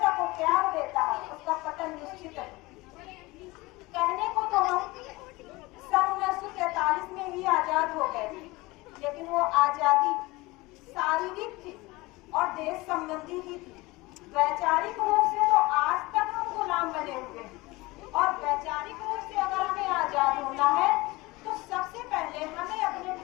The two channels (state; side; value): quieter; right; 21.8 dB